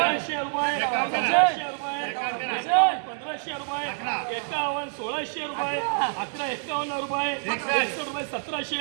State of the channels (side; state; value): left; silent; digital silence